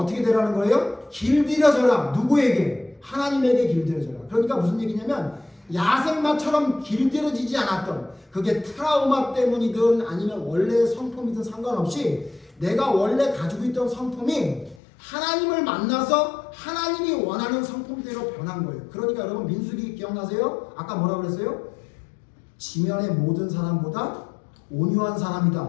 되라는 거예요? 길들여져라. 누구에게? 하나님에게 길들여져라. 그러니까 무슨 얘기냐면 야생마처럼 길들여지지 않았던 그게 트라우마 때문이든 아니면 원래 성품이든 상관없이 내가 원래 가지고 있던 성품이 하나님을 만나서 하나님이 원하는 성품대로 변한 거예요. 그러니까 여러분 민수기 기억나세요? 아까 뭐라고 그랬어요? 지면의 모든 사람보다 온유한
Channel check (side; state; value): right; drops out; at 14.8 s